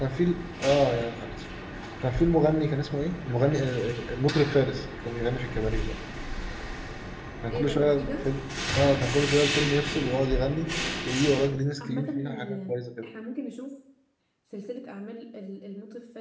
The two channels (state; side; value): identical; both; correlation 1.00